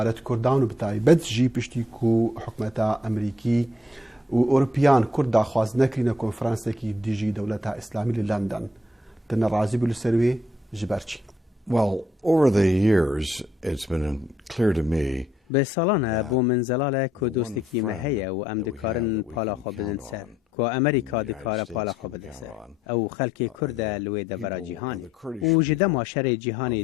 كردان وبتاي بد جي بشتيكو حكمتا امريكي واوروبيان كردا خواز نكرينا كونفرنس كي ديجي دولتها اسلامي لندن تن رازي بالسروي جبرتشي. Well, over the years it's been clear to me به سالانه بو من زلاله که دوستکی مهیه و ام دکارن پالا خو بدن سر که امریکا دکاره پالا خو بده سر او خلک کرد لوی دبرا جهانی و جده ماشر جهانی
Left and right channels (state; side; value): normal; both; correlation 0.72